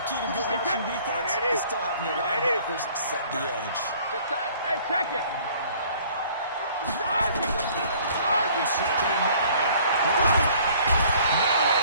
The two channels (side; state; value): both; inverted; correlation -0.55